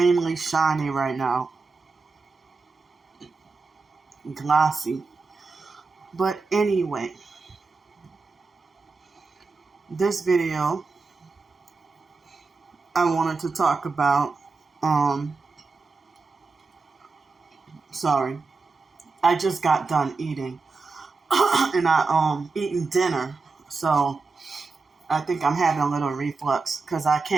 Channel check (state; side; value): quieter; left; 4.2 dB